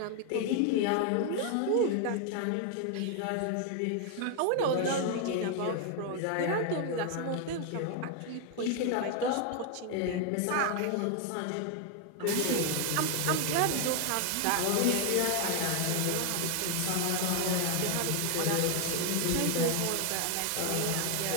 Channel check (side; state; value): both; different; correlation 0.00